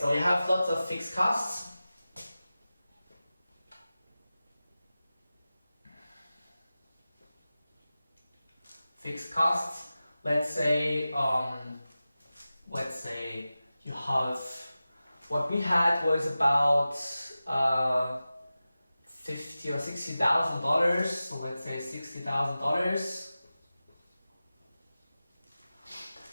you have lots of fixed costs. Fixed costs. Let's say you have, what we had was about $50,000 or $60,000. So let's say $60,000,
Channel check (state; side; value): inverted; both; correlation -0.95